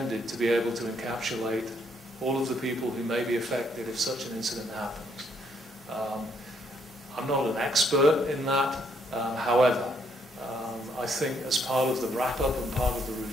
to be able to encapsulate all of the people who may be affected if such an incident happens. I'm not an expert in that, however, I think as part of the wrap-up and part of the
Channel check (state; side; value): normal; both; correlation 0.71